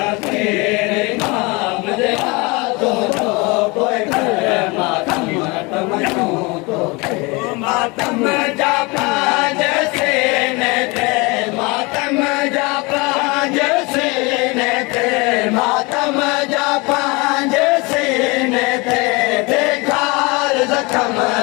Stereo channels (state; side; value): quieter; right; 26.5 dB